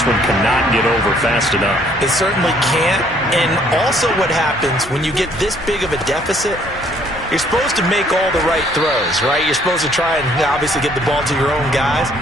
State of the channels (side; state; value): both; normal; correlation 0.63